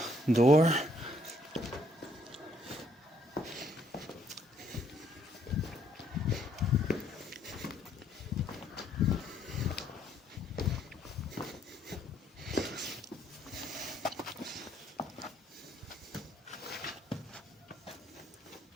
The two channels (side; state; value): both; normal; correlation 0.68